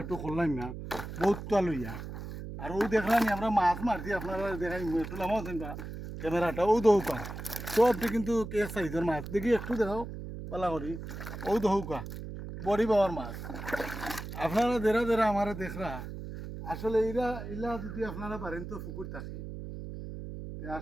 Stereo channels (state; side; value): noise; right; hum, 9 dB below the sound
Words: একটু করলাম না বহুত তা লইয়া আর ও দেখলাম আমরা মাছ মারছি আপনারা দেখাই একটু নামাও বা ক্যামেরাটা ও দৌকা সবটি কিন্তু এক সাইজের মাছ দেখি একটু দেখাও বালা করি ও দৌকা বড়ি পাওয়ার মাছ আপনারা দেরা দেরা আমার দেখরা আসলে ইলা যদি আপনারা পারেন তো পুকুর থাকে